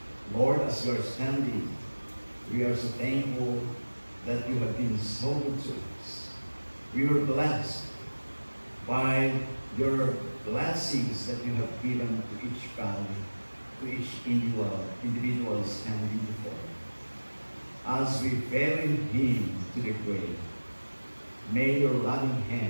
Lord, as we are standing, we are so thankful that you have been so good to us. We were blessed by your blessings that you have given to each family, to each individual standing before you. As we bury him to the grave, may your loving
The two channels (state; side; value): inverted; both; correlation -1.00